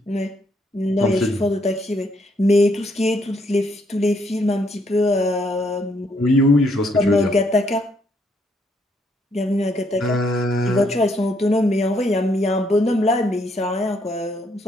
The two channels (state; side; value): normal; both; correlation 0.72